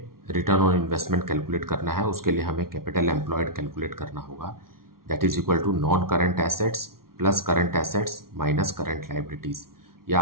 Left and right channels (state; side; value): late; left; 0.93 ms